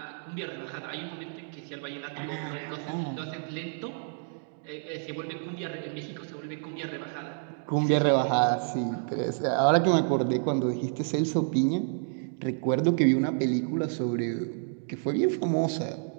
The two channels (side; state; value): left; silent; 58 dB below the other